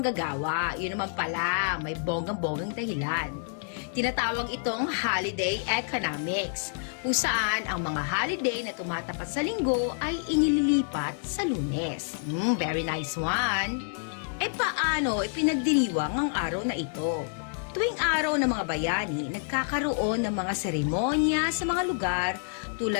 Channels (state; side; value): silent; right; digital silence